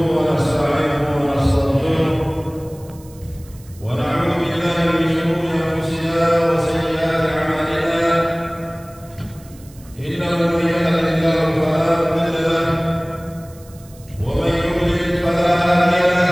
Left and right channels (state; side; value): noise; right; hiss, 25 dB below the sound